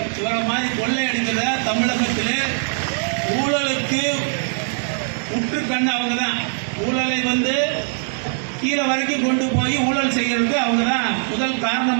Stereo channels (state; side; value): silent; left; 65 dB below the other